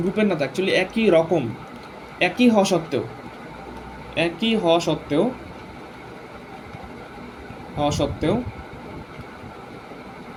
গ্রুপের না, অ্যাকচুয়ালি একই রকম, একই হওয়া সত্ত্বেও, একই হওয়া সত্ত্বেও,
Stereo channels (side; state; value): both; identical; correlation 1.00